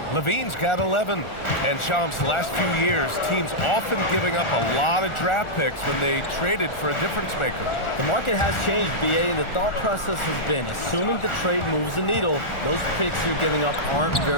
Levine's got 11. And Shams, the last few years, teams often giving up a lot of draft picks when they traded for a difference maker. The market has changed, BA, and the thought process has been, assuming the trade moves the needle, those picks you're giving up aren't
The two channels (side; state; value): right; late; 1.4 ms